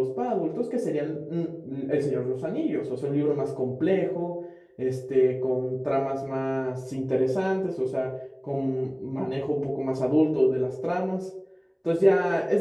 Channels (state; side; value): identical; both; correlation 1.00